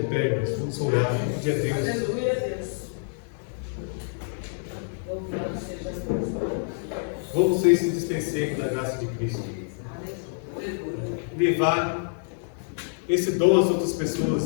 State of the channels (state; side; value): silent; right; digital silence